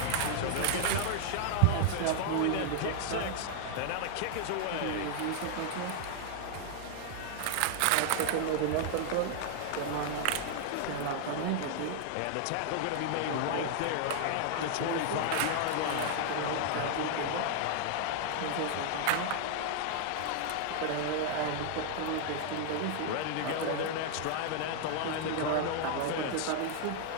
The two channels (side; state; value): both; different; correlation 0.00